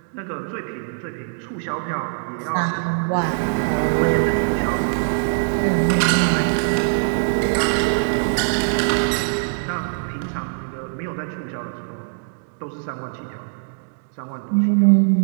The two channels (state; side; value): silent; left; digital silence